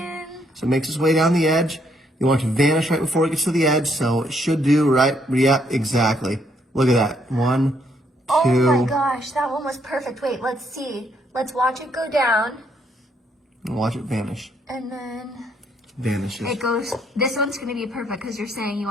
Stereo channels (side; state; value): both; normal; correlation 0.71